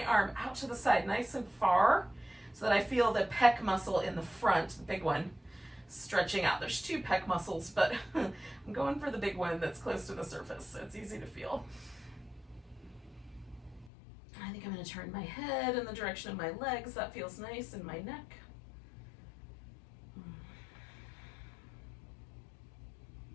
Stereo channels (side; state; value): right; drops out; at 13.9 s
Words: arm out to the side nice and far so that I feel the pec muscle in the front, the big one, stretching out. There's 2 pec muscles, but I'm going for the big one that's close to the surface, so it's easy to feel. I think I'm gonna turn my head in the direction of my legs. That feels nice in my neck.